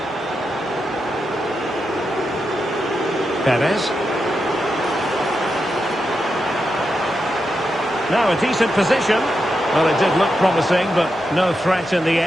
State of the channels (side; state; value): both; normal; correlation 0.86